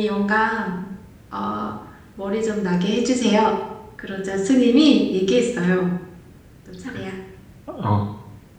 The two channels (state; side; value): identical; both; correlation 1.00